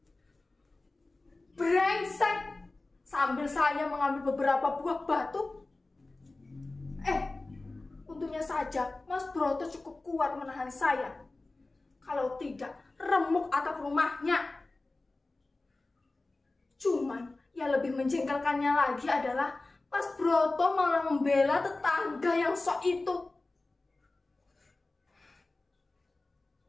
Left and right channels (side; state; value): right; quieter; 3.1 dB